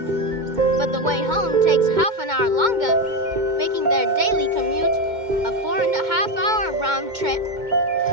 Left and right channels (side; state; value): left; late; 2.2 ms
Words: But the way home takes half an hour longer, making their daily commute a 4.5-hour round trip.